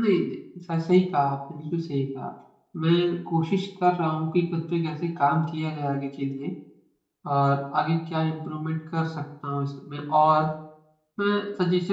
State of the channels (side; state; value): both; identical; correlation 1.00